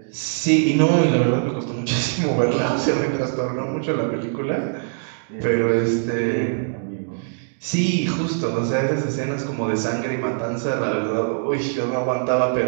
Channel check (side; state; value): left; silent; digital silence